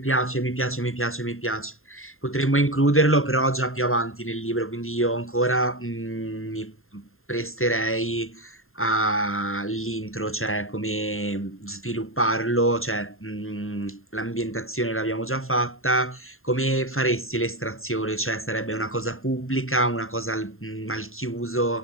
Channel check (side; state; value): right; late; 0.61 ms